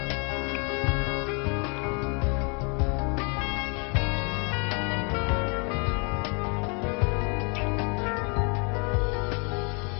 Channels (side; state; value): right; quieter; 35.0 dB